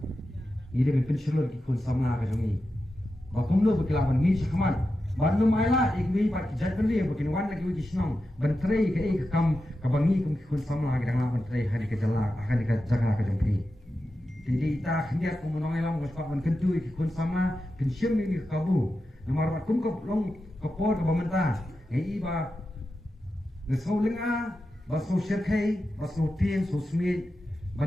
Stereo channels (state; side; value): normal; both; correlation 0.90